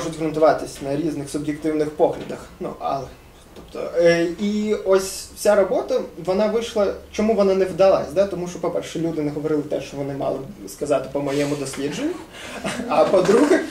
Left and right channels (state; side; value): identical; both; correlation 1.00